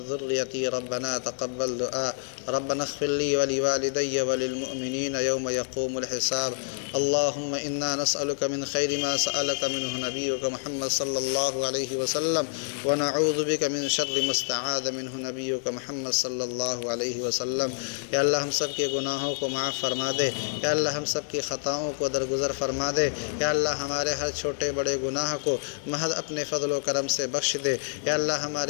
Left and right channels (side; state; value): right; silent; 60 dB below the other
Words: ذريتي ربنا تقبل دعاء۔ ربنا اغفر لي ولوالدي وللمؤمنين يوم يقوم الحساب۔ اللهم إنا نسألك من خير ما سألك منه نبيك محمد صلى الله عليه وسلم، ونعوذ بك من شر ما استعاذ منه نبيك محمد صلی اللہ علیہ وسلم۔ یا اللہ ہم سب کے گناہوں کو معاف فرما دے، یا اللہ ہم سب کی خطاؤں کو درگزر فرما دے، یا اللہ ہمارے ہر چھوٹے بڑے گناہ کو محض اپنے فضل و کرم سے بخش دے، یا اللہ